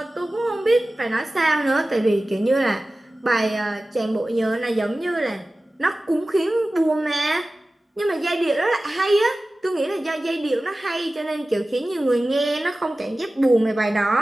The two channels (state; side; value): normal; both; correlation 0.96